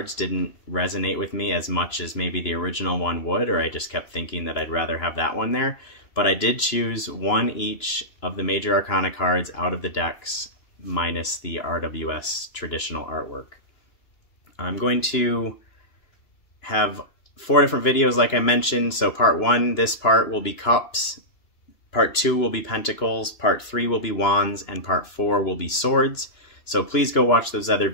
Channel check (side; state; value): right; late; 2.9 ms